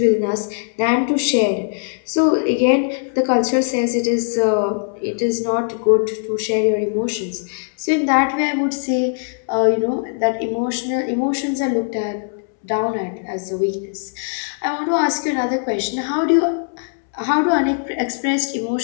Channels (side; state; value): right; silent; 66 dB below the other